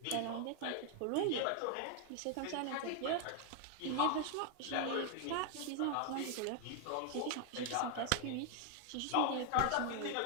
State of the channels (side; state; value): both; different; correlation 0.00